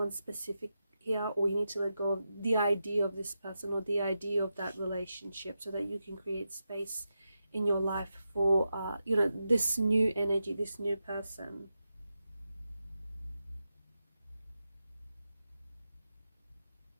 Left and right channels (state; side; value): inverted; both; correlation -0.88